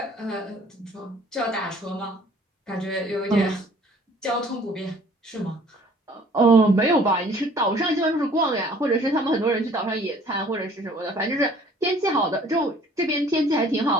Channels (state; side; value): normal; both; correlation 0.54